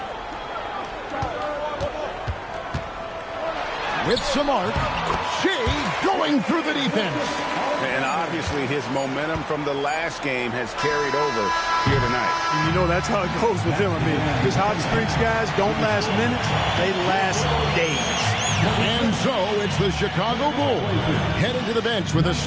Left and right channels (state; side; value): identical; both; correlation 1.00